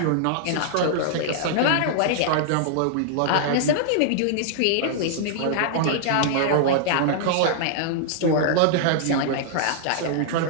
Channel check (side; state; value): both; different; correlation -0.01